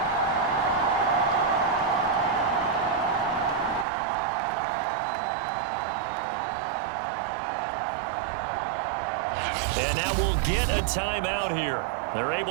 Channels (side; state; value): left; drops out; at 3.9 s